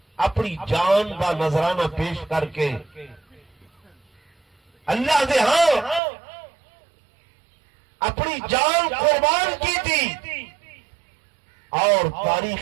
اپنی جان کا نذرانہ پیش کر کے اللہ دے ہاں اپنی جان قربان کی تھی اور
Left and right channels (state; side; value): drops out; left; at 6.0 s